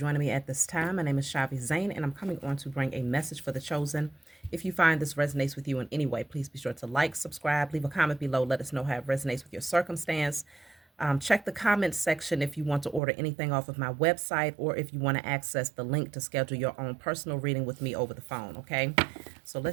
me at this time. My name is Shavi Zane, and I'm coming on to bring a message for the chosen. If you find this resonates with you in any way, please be sure to like, subscribe, leave a comment below. Let us know how it resonates with your circumstance. Check the comments section if you want to order anything off of my website, or if you want to access the link to schedule your own personal reading with me over the phone, okay? So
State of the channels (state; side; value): drops out; left; at 13.0 s